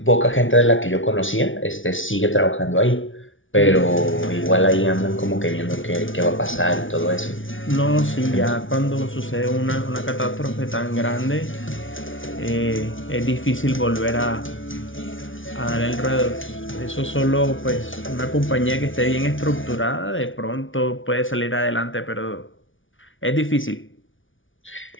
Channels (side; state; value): right; late; 0.57 ms